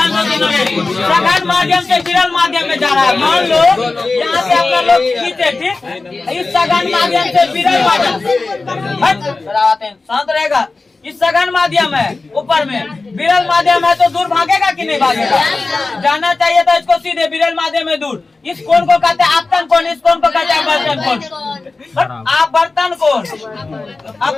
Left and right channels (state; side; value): quieter; right; 3.6 dB